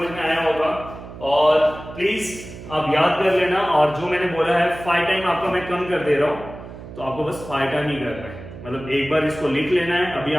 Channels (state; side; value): noise; right; hum, 14 dB below the sound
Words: में आया होगा, और प्लीज आप याद कर लेना। और जो मैंने बोला है 5 टाइम आपका मैं कम कर दे रहा हूँ, तो आपको बस 5 टाइम ही करना है। मतलब एक बार इसको लिख लेना है, अभी